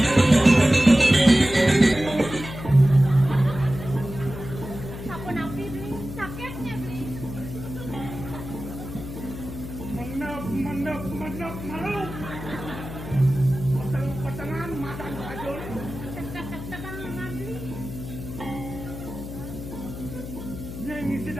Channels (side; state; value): left; noise; hum, 10 dB below the sound